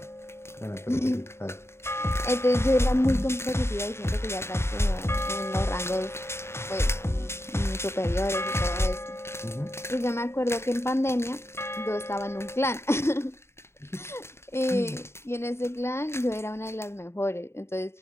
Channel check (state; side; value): late; right; 0.12 ms